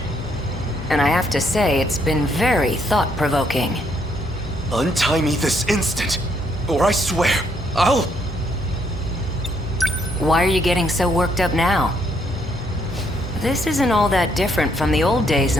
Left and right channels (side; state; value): both; normal; correlation 0.72